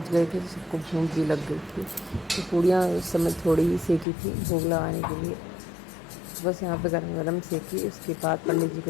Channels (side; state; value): right; drops out; at 4.0 s